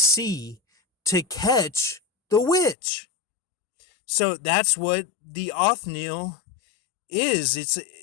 to catch the witch. So that's what the Othniel is. It's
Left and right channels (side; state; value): right; drops out; at 2.8 s